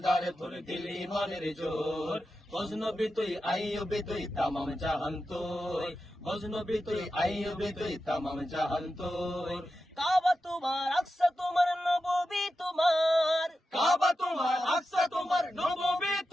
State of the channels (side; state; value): both; normal; correlation 0.91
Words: তোর দিল ইমানের জোর, গজনবী তুই আইয়ুবী তুই তামাম জাহান তোর, গজনবী তুই আইয়ুবী তুই তামাম জাহান তোর। কাবা তোমার, আকসা তোমার, নববী তোমার, কাবা তোমার, আকসা তোমার, নববী